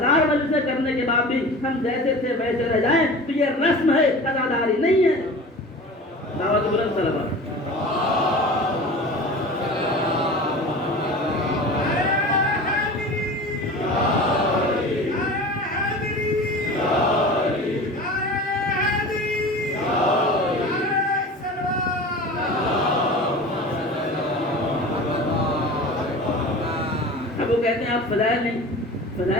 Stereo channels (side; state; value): both; normal; correlation 0.36